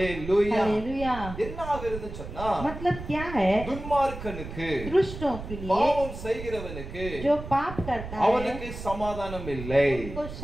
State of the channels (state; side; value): noise; right; rumble, 10 dB below the sound